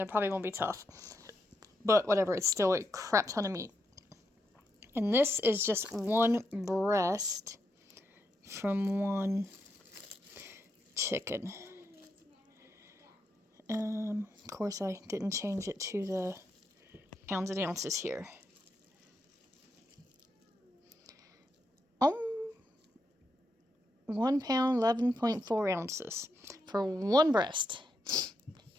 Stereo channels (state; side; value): normal; both; correlation 0.82